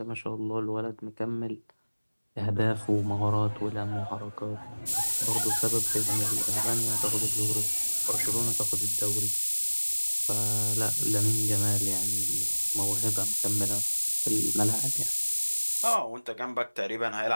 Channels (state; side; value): inverted; both; correlation -1.00